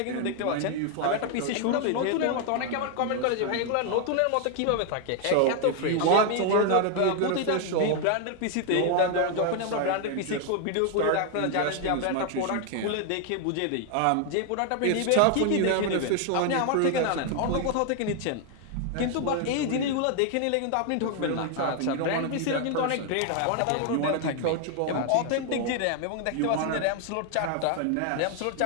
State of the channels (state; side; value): different; both; correlation 0.00